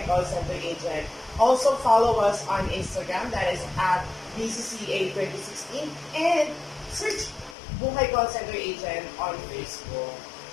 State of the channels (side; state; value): right; drops out; at 7.6 s